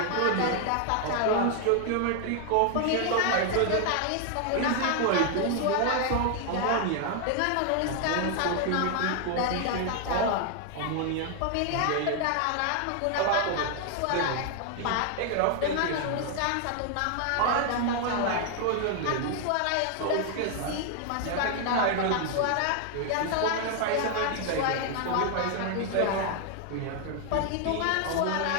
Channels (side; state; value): both; different; correlation 0.00